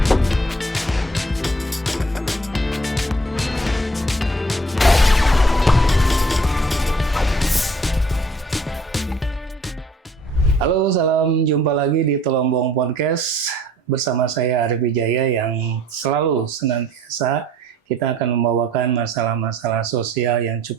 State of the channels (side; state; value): both; normal; correlation 0.56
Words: Halo, salam jumpa lagi di Telombong Podcast bersama saya Arif Wijaya yang selalu senantiasa kita akan membawakan masalah-masalah sosial yang